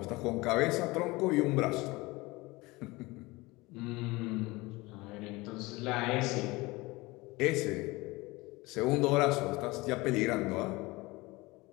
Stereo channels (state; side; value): quieter; right; 22.3 dB